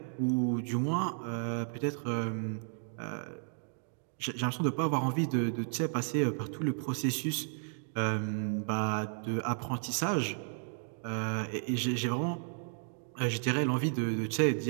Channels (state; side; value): silent; left; 56 dB below the other